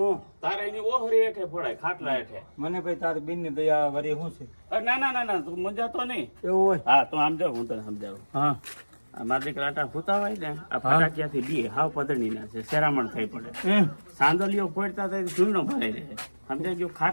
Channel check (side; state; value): both; inverted; correlation -1.00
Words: તારે એની ઓહરી હેઠે ફોડાય ખાટલા હેઠે મને ભાઈ તારી બેન ની દયા વરી શું છે ના તું મજા તો નહીં એવું હોય હા તું આમ જાવ હું તને સમજાવું હા મારા દીકરા આટા ફૂતા હોય ને આ ફટાકિયાથી બી હાવ પદણી ના છે શેરામણ થઈ પડે એમ સાંદલીઓ ફોડતા થાય ધૂળનો ભરાઈ રહે સમજાય ગયું